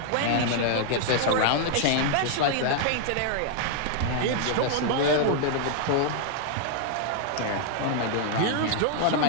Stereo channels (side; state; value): both; different; correlation -0.01